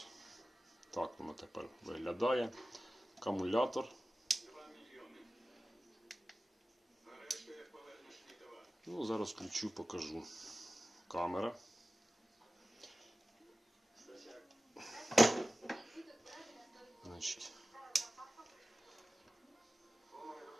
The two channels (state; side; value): normal; both; correlation 0.96